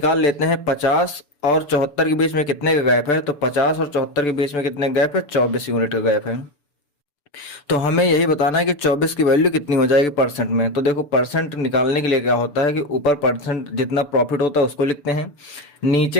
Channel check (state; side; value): late; right; 6.9 ms